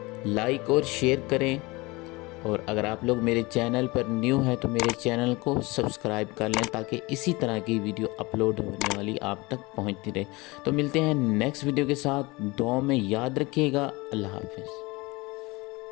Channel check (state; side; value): quieter; right; 23.5 dB